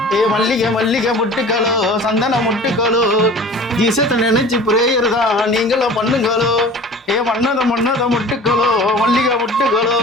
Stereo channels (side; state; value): both; normal; correlation 0.42